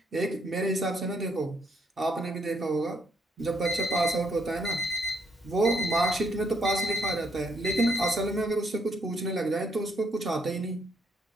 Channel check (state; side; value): normal; both; correlation 0.72